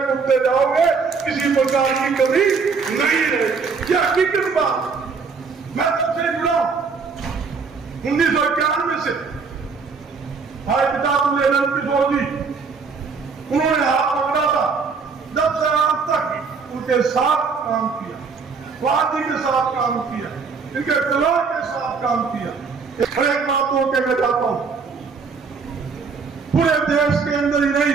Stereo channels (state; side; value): quieter; left; 5.1 dB